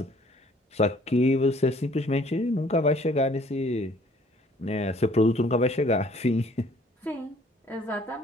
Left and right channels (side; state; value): both; normal; correlation 0.57